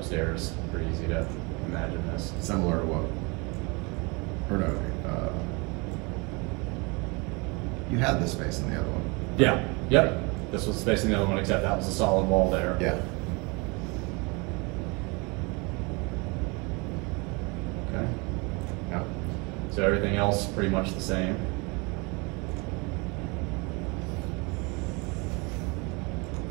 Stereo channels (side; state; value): left; quieter; 28.6 dB